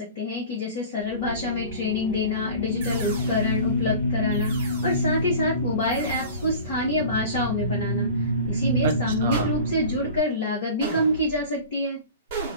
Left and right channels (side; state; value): both; inverted; correlation -0.39